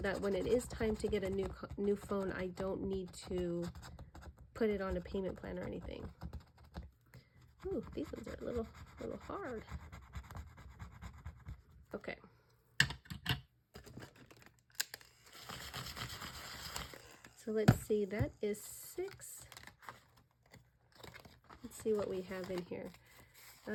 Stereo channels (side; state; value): both; identical; correlation 1.00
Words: when it is time to get a new phone, I don't need to put it on a payment plan or anything. Ooh, these ones are a little hard. Okay. So let's see, that is 6. Let's see what we have in here.